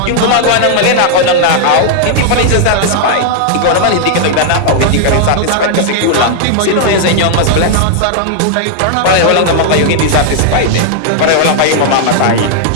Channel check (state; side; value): different; both; correlation 0.00